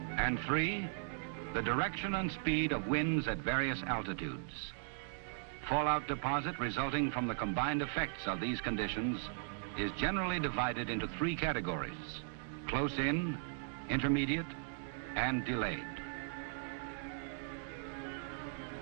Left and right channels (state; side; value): silent; left; digital silence